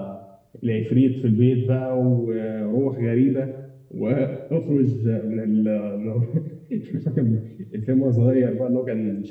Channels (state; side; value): identical; both; correlation 1.00